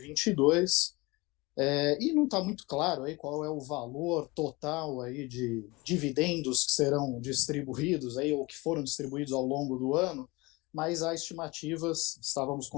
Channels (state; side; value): quieter; right; 23.7 dB